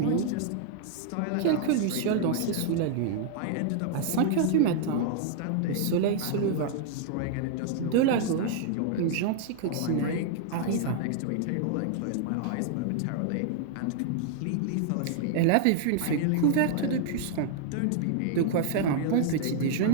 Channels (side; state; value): both; different; correlation -0.01